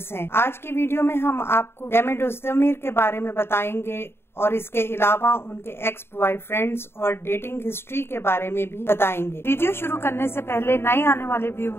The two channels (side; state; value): right; late; 0.11 ms